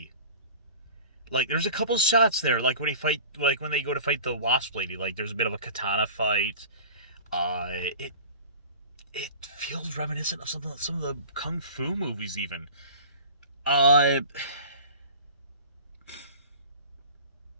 Like there's a couple shots there, like when they go to fight the Wasp Lady. Like there's a bit of a katana fight. It feels reminiscent of some of the kung fu movies even. Uh,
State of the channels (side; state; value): both; inverted; correlation -0.39